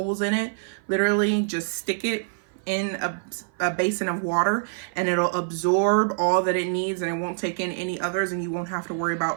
in it, literally just stick it in a basin of water and it'll absorb all that it needs and it won't take in any others, and you won't have to worry about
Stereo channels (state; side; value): silent; left; 56 dB below the other